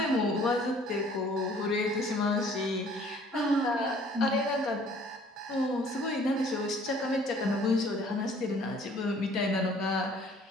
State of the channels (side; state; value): both; normal; correlation 0.56